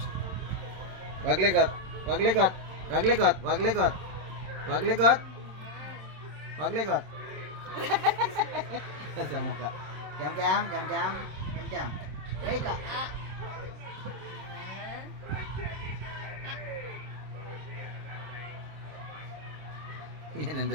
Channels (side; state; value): left; late; 27 ms